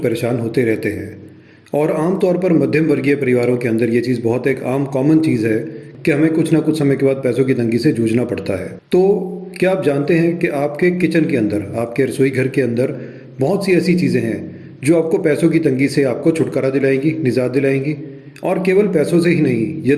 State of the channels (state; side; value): identical; both; correlation 1.00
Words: होते रहते हैं। और आम तौर पर मध्यम वर्गीय परिवारों के अंदर ये चीज़ बहुत एक आम कॉमन चीज़ है कि हमें कुछ ना कुछ समय के बाद पैसों की तंगी से जूझना पड़ता है। तो क्या आप जानते हैं कि आपके किचन के अंदर, आपके रसोई घर के अंदर बहुत सी ऐसी चीज़ें हैं जो आपको पैसों की तंगी से आपको छुटकारा दिलाएंगी, निजात दिलाएंगी। और केवल पैसों से ही नहीं,